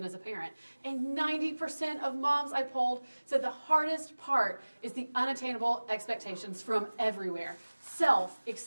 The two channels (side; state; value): both; inverted; correlation -1.00